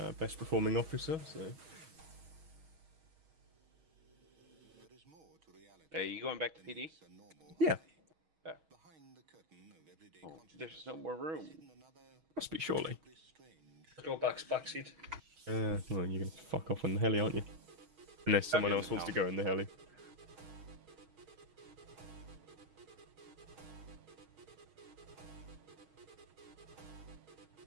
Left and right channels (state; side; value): late; left; 6.3 ms